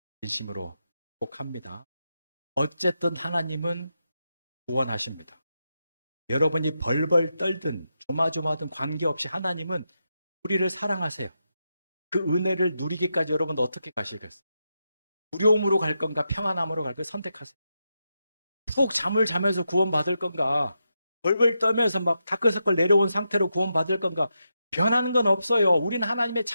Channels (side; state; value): both; inverted; correlation -0.86